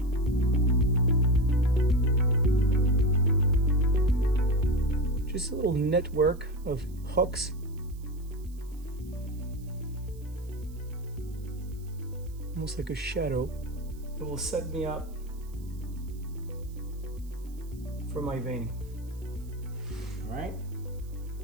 Just a little network of hooks. Almost like a shadow. It will set me up for my veining. All right.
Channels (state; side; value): noise; right; hiss, 26 dB below the sound